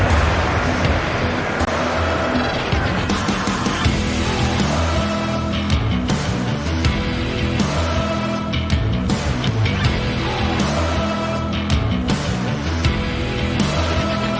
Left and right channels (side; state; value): both; identical; correlation 1.00